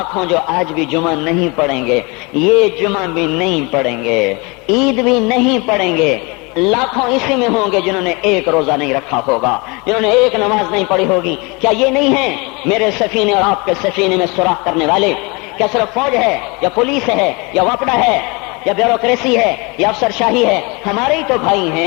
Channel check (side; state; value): right; quieter; 28.4 dB